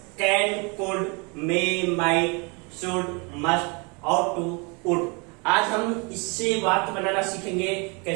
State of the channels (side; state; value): left; quieter; 31.3 dB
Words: can, could, may, might, should, must और टू, वुड। आज हम इससे वाक्य बनाना सीखेंगे,